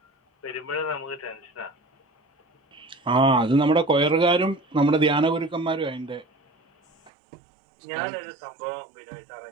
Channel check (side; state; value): left; drops out; at 7.1 s